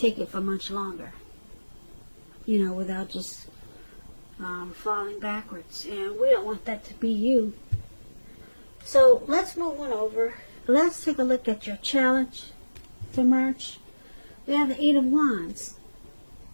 it for much longer. You know, without just falling backwards. And we don't want that to be you. So let's move on over. Let's take a look at your challenge for March. We have the Eight of Wands.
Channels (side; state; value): both; inverted; correlation -1.00